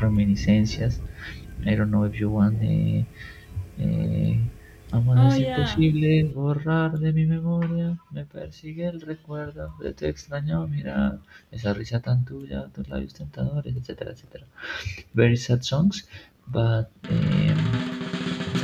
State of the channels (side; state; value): both; identical; correlation 1.00